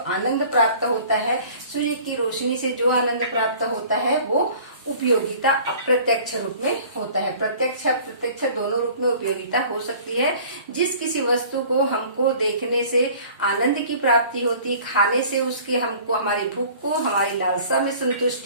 प्राप्त होता है, सूर्य की रोशनी से जो आनंद प्राप्त होता है वो उपयोगिता अप्रत्यक्ष रूप में होता है। प्रत्यक्ष अप्रत्यक्ष दोनों रूप में उपयोगिता हो सकती है। जिस किसी वस्तु को हमको देखने से आनंद की प्राप्ति होती, खाने से उसके हमको हमारी भूख को, हमारी लालसा में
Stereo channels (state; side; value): inverted; both; correlation -0.48